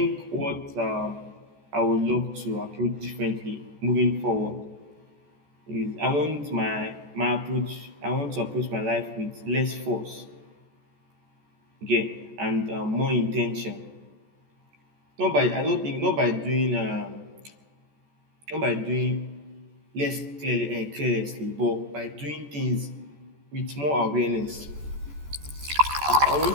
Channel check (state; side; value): late; left; 14 ms